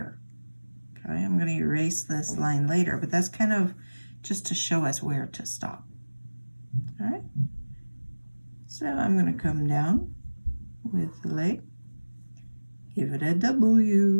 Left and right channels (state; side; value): inverted; both; correlation -1.00